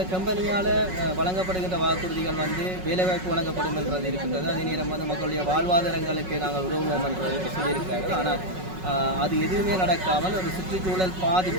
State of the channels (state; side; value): late; left; 5.4 ms